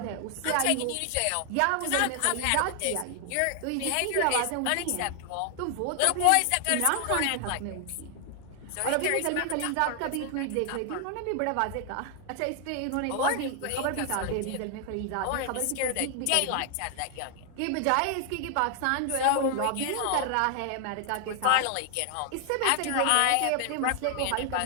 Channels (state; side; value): different; both; correlation 0.00